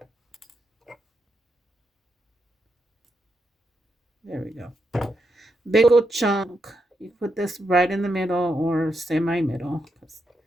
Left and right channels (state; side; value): normal; both; correlation 0.83